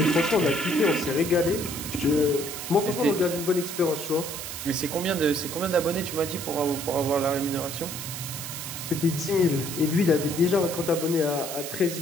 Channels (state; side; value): noise; right; hiss, 7 dB below the sound